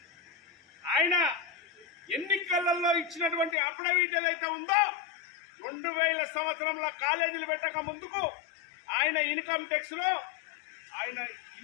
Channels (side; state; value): right; drops out; at 3.6 s